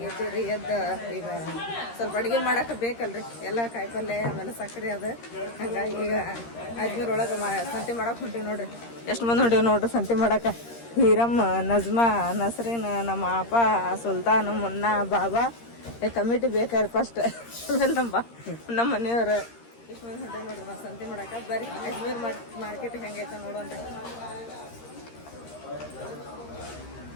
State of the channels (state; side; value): late; right; 13 ms